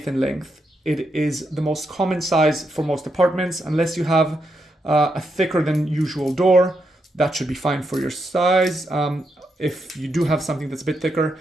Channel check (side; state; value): both; normal; correlation 0.82